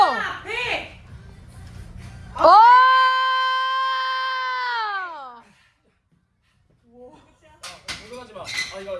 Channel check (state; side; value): identical; both; correlation 1.00